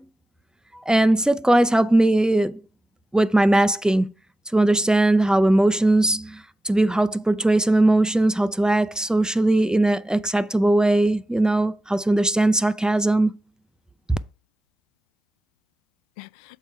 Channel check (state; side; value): normal; both; correlation 0.93